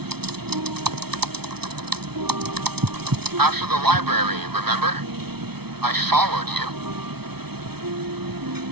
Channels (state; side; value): late; left; 0.97 ms